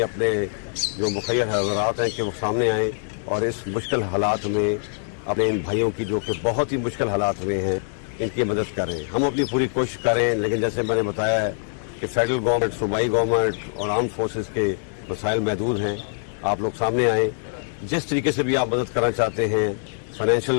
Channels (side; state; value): right; silent; digital silence